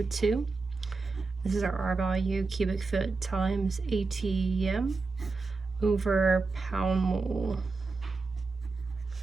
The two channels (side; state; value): left; quieter; 4.0 dB